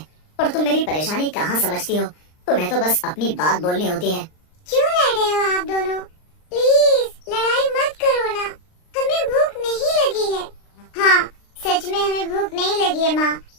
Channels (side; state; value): right; late; 39 ms